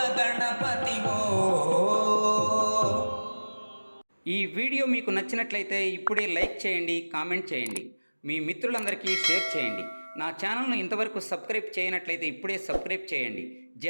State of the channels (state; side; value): inverted; both; correlation -1.00